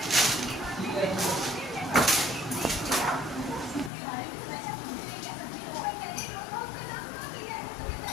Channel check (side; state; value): right; drops out; at 3.9 s